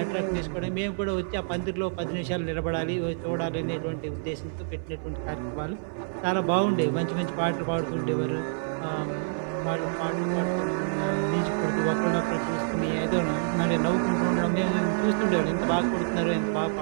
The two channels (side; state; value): left; silent; 57 dB below the other